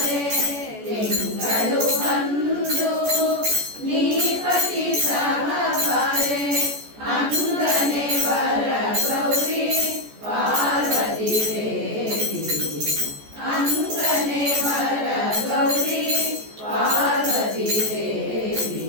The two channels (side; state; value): left; late; 14 ms